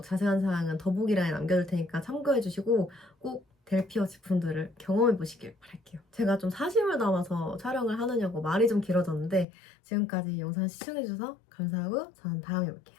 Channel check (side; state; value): right; drops out; at 9.5 s